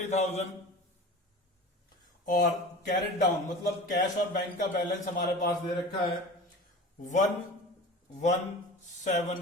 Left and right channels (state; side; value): normal; both; correlation 0.36